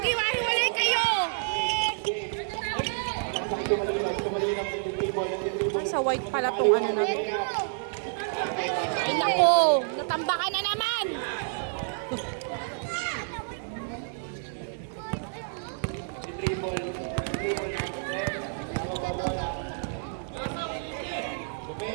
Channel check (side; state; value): left; silent; digital silence